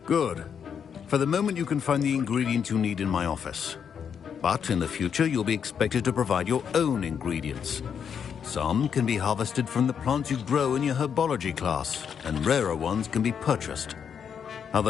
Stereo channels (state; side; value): quieter; right; 7.5 dB